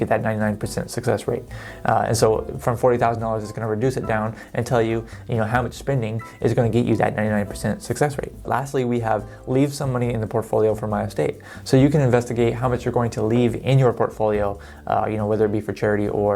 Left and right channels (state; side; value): identical; both; correlation 1.00